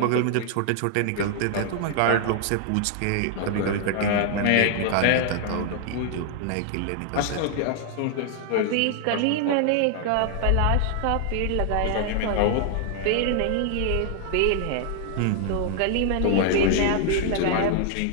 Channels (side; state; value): both; different; correlation 0.00